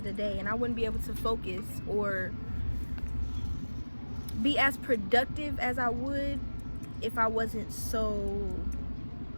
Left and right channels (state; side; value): inverted; both; correlation -1.00